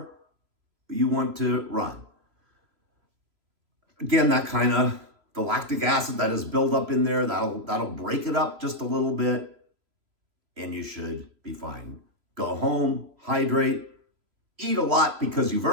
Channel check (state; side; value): late; left; 3.0 ms